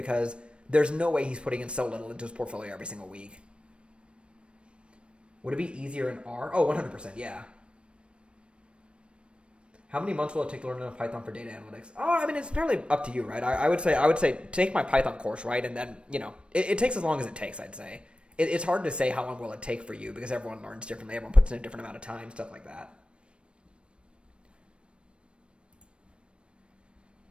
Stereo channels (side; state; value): left; late; 0.058 ms